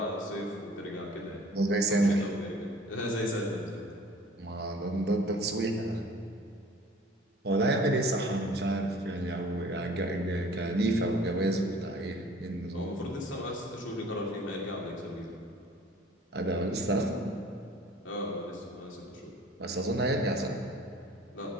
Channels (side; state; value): both; normal; correlation 0.49